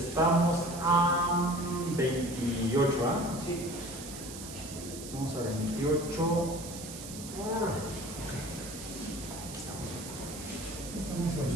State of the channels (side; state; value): right; noise; hiss, 11 dB below the sound